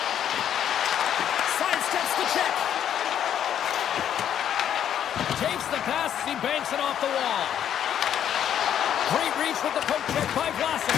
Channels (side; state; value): right; quieter; 9.8 dB